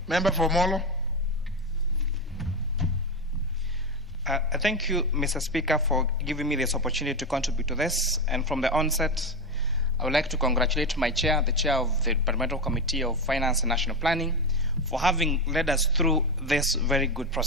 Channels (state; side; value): normal; both; correlation 0.14